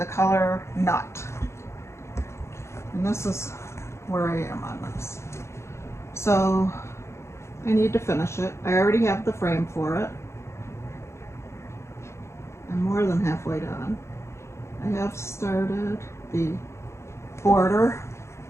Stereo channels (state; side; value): late; right; 0.13 ms